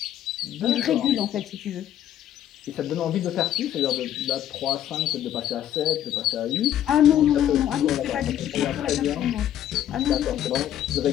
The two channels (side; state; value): right; quieter; 11.3 dB